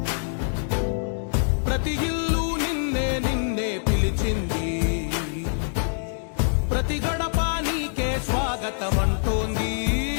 ప్రతి ఇల్లు నిన్నే నిన్నే పిలిచింది, ప్రతి గడప నీకే స్వాగతమంటోంది,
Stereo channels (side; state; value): right; silent; digital silence